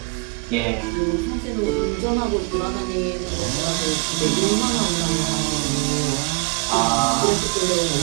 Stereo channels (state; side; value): quieter; left; 30.7 dB